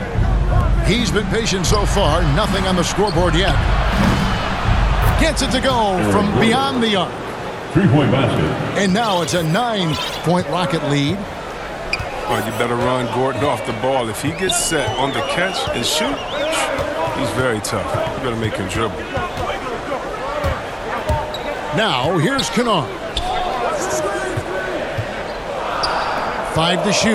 He's been patient so far. Nothing on the scoreboard yet. Gets it to go from beyond the arc. 3-point basket. And now it's a 9-point Rocket lead. Well, you better run Gordon off the ball. If he gets set on the catch and shoot, he's very tough. You better make him dribble. Now, here's Kennard. 5 to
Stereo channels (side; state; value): both; identical; correlation 1.00